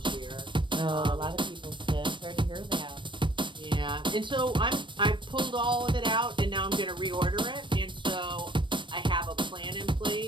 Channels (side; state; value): left; late; 0.23 ms